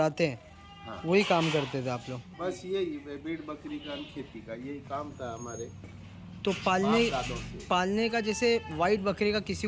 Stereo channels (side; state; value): both; identical; correlation 1.00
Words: हैं हाँ, वही काम करते थे आप लोग? बस यही भेड़ बकरी का, खेती का यही काम था हमारे तो बाप दादों से। पालने का जैसे वाइट बकरे का किसी